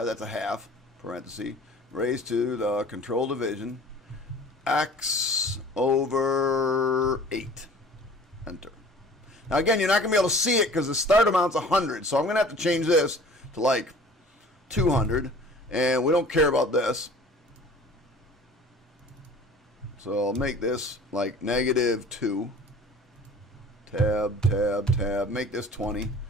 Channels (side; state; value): both; normal; correlation 0.46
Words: that's a half, parenthesis, raised to the control division, x over 8. Enter. Now again, you're not going to be able to see it because the start amount's 100. So I'm going to have to change this to like 200. And we don't care about this. So I'll make this like -2. Tab, tab, tab. Make this 20